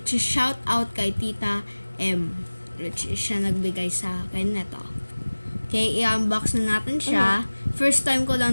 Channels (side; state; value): both; inverted; correlation -1.00